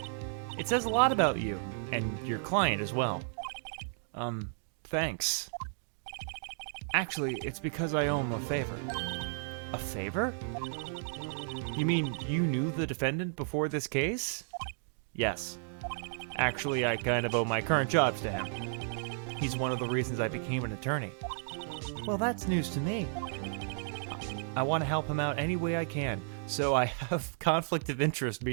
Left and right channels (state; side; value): silent; left; digital silence